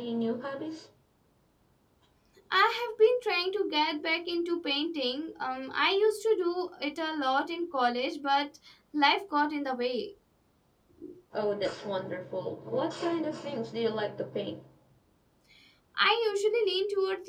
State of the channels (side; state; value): both; identical; correlation 1.00